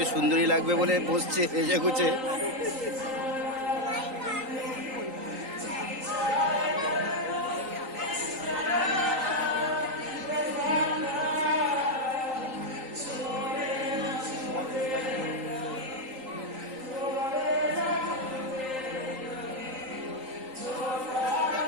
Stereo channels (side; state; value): left; late; 3.8 ms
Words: সুন্দরী লাগবে বলে বসছে এসে গুছে।